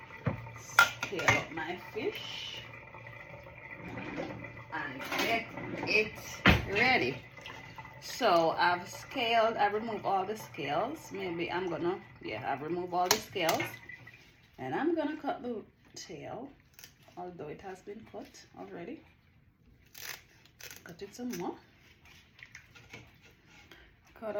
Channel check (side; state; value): both; identical; correlation 1.00